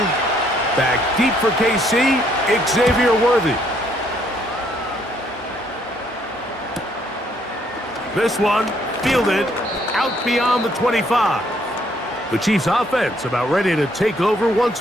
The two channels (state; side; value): normal; both; correlation 0.68